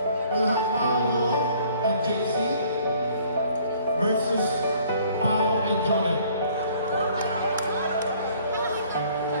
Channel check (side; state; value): both; inverted; correlation -0.58